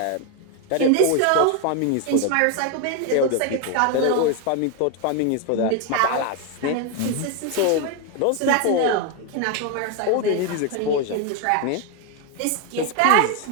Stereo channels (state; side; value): different; both; correlation 0.01